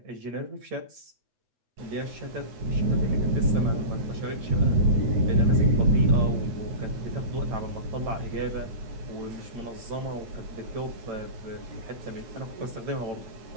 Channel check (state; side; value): late; left; 8.9 ms